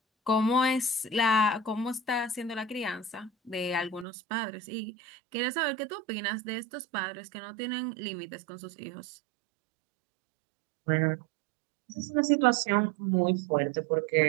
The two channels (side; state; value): left; drops out; at 4.0 s